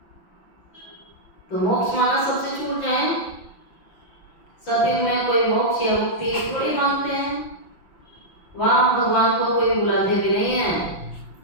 तो मोक्ष माना सबसे छूट जाए। सतयुग में कोई मोक्ष या मुक्ति थोड़ी मांगते हैं, वहां भगवान को कोई बुलाते भी नहीं है।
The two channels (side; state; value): right; late; 5.6 ms